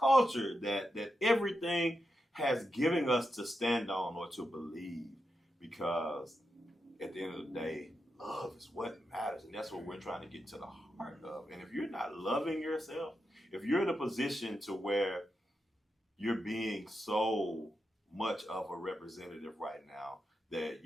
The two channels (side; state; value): both; normal; correlation 0.87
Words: that everything has given us to stand on or to believe, because at the end of the day, love is what matters, and that's what we're trying to get to the heart of. And if you're not loving yourself, if you're in a position to where you're being so much of a representative right now that